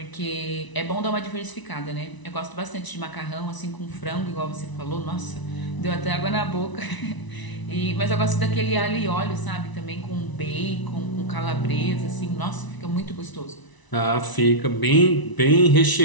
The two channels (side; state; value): right; late; 1.0 ms